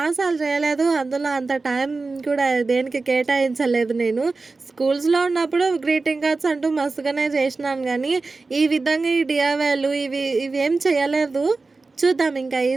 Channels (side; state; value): left; quieter; 3.8 dB